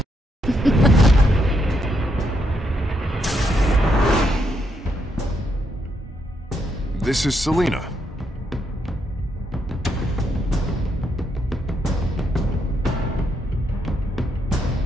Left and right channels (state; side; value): normal; both; correlation 0.78